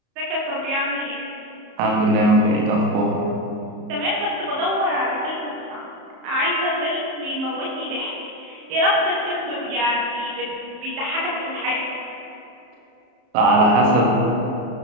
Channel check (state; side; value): late; left; 34 ms